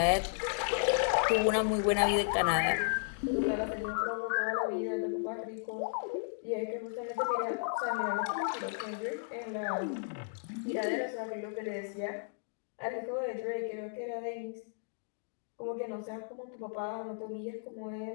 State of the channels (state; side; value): silent; right; digital silence